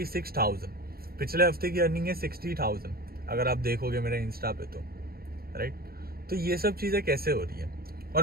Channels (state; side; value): late; left; 0.44 ms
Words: पिछले हफ्ते की अर्निंग है 60,000, अगर आप देखोगे मेरे इंस्टा पे तो, राइट। तो ये सब चीजें कैसे हो रही है।